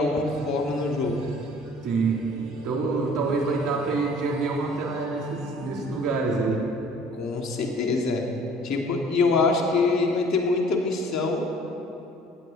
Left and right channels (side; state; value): both; normal; correlation 0.52